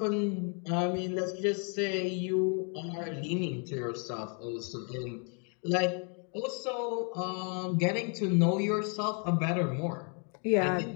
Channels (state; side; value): quieter; right; 39.3 dB